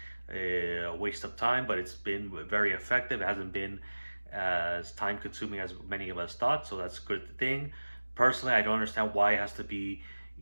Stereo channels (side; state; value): both; inverted; correlation -1.00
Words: a waste of time. But it's been very effective. It hasn't been as time consuming as many of us thought. So that's a good thing. Personally, I don't understand why it has to be